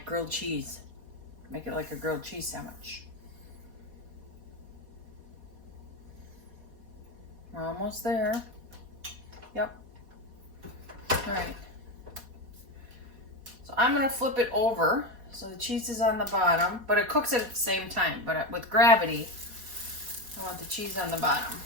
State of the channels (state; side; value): late; left; 4.1 ms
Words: grilled cheese. Make it like a grilled cheese sandwich. We're almost there. Yep. Alright. So I'm going to flip it over so the cheese is on the bottom, but it cooks it at the same time. But with gravity, I want the cheese on the bottom.